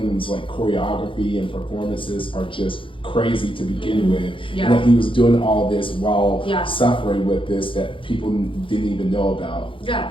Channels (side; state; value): right; late; 0.25 ms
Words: like choreography and performances are just crazy to begin with. And that he was doing all this while suffering with this that people didn't even know about.